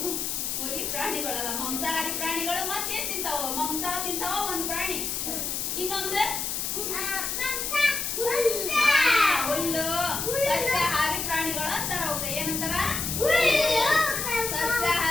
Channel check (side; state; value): left; noise; hiss, 2 dB below the sound